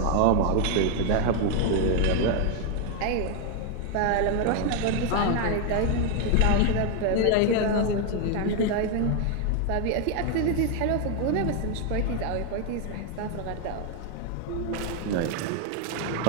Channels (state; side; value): different; both; correlation 0.01